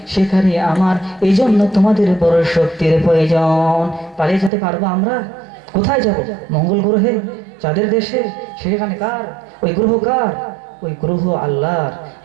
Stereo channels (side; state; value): left; drops out; at 4.5 s